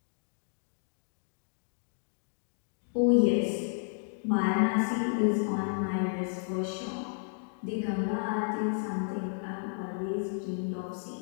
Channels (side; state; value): right; silent; digital silence